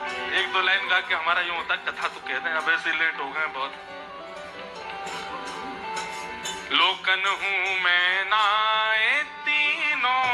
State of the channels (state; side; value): identical; both; correlation 1.00